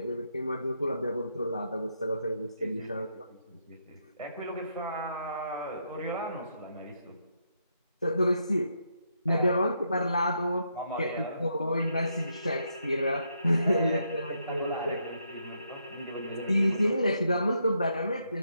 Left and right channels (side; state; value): both; inverted; correlation -0.78